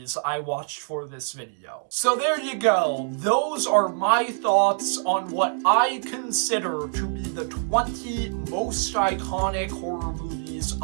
I watched for this video. So there you go. Those are my thoughts on what I consider to be the 20 most iconic horror movies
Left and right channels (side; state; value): left; silent; digital silence